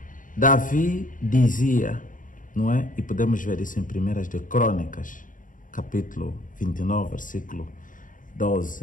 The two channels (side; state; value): right; late; 0.38 ms